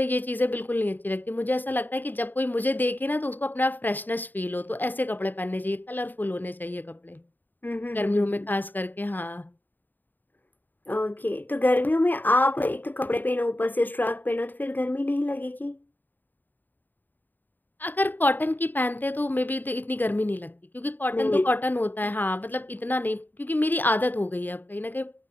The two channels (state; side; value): late; right; 0.089 ms